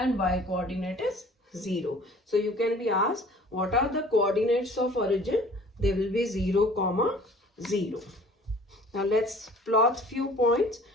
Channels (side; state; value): both; normal; correlation 0.50